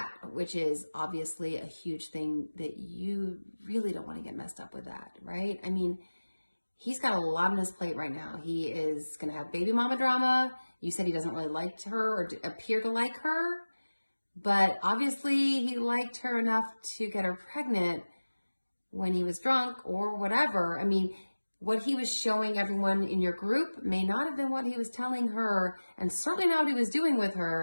which is obviously a huge thing that you really don't want to get messed up with that, right? I mean, he's got a lot on his plate right now. He is going to have baby mama drama. You said he doesn't really like her or appear to like her, but obviously he liked her enough to get her pregnant when he was drunk or whatever. I mean, what he was showing everyone in your group may not have been what he was telling her, and certainly not what he was doing with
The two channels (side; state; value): both; inverted; correlation -1.00